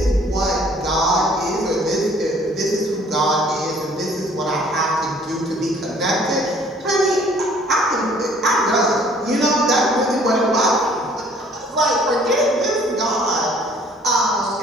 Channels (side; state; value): both; normal; correlation 0.57